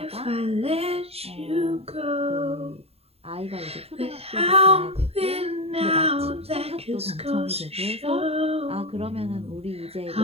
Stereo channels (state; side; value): late; left; 0.29 ms